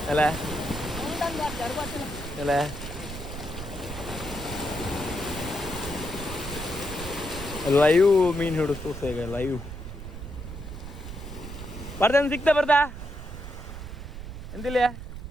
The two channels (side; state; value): right; noise; rumble, 9 dB below the sound